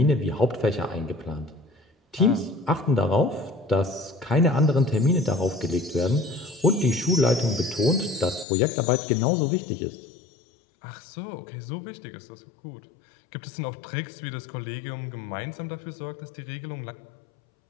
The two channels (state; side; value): drops out; right; at 8.5 s